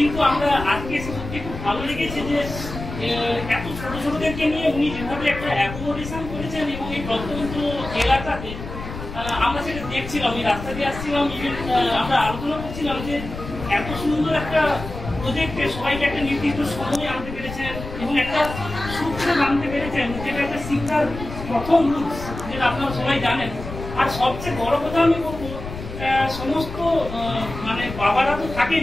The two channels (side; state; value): left; noise; rumble, 10 dB below the sound